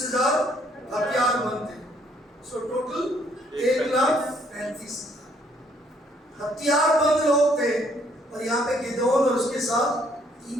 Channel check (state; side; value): normal; both; correlation 0.66